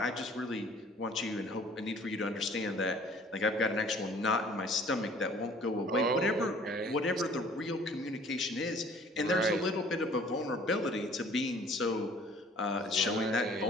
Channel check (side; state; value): both; normal; correlation 0.54